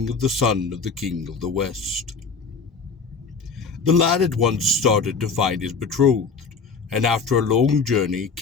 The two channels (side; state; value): right; quieter; 4.9 dB